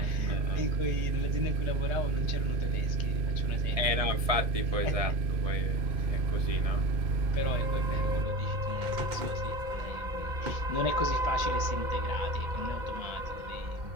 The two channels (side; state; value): left; late; 1.7 ms